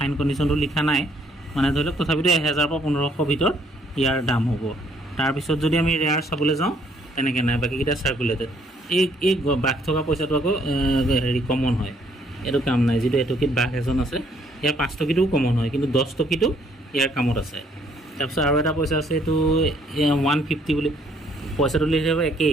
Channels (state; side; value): normal; both; correlation 0.66